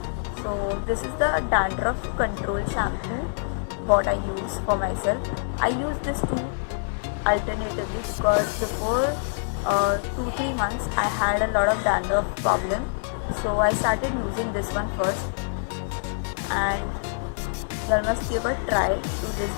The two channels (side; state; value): right; silent; digital silence